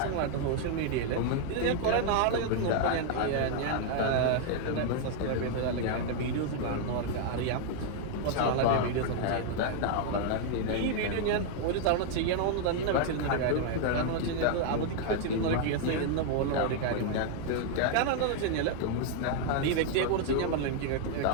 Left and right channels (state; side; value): different; both; correlation 0.00